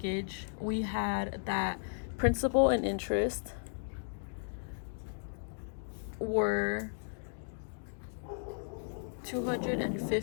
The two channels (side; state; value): right; silent; digital silence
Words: we had that principal and interest were